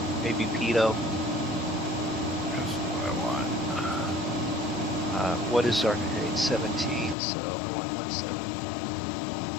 maybe pitot. That's what I want. What is our grade? 17, so I want 17.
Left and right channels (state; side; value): drops out; right; at 7.2 s